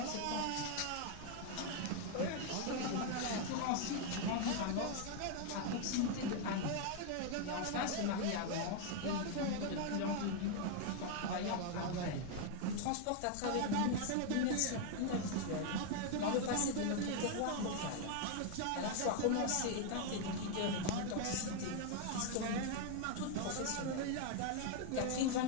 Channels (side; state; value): both; different; correlation 0.01